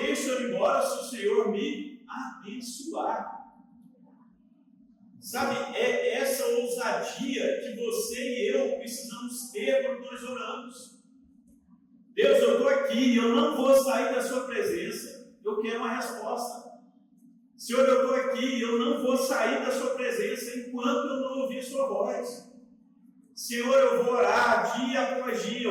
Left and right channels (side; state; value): both; identical; correlation 1.00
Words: ele embora se o Senhor me abençoar. Sabe, é essa ousadia que você e eu precisamos ter quando nós oramos. Deus, eu estou aqui, eu não vou sair da sua presença, eu quero uma resposta. Senhor, eu estou aqui, eu não vou sair da sua presença enquanto eu não ouvir sua voz. Senhor, eu vou orar dia após dia,